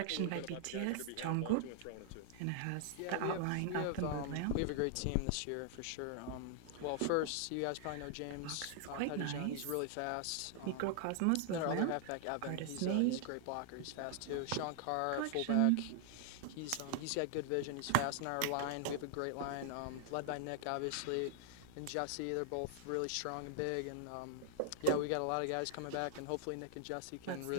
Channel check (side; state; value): both; different; correlation -0.01